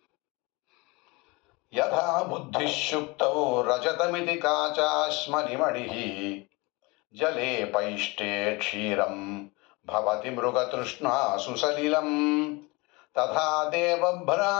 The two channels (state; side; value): quieter; right; 25.6 dB